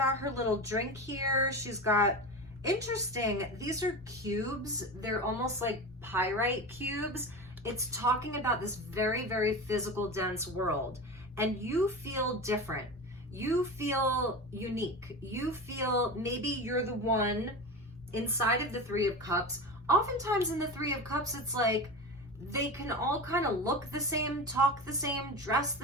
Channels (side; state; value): right; noise; rumble, 26 dB below the sound